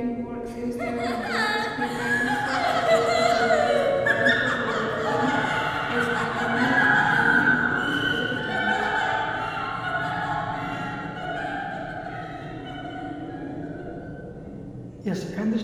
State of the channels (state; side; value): identical; both; correlation 1.00